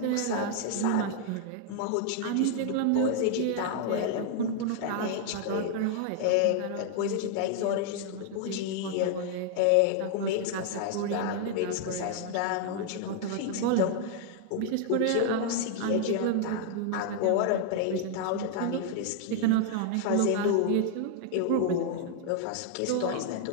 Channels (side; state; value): both; different; correlation 0.00